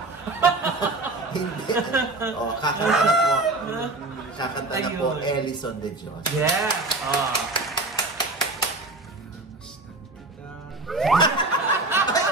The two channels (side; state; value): left; quieter; 3.0 dB